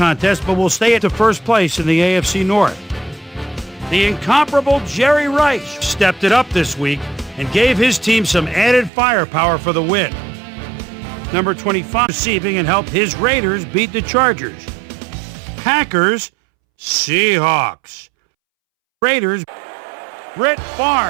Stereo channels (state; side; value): drops out; left; at 8.9 s